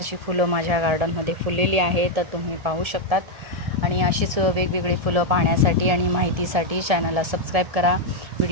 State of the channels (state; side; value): late; left; 1.7 ms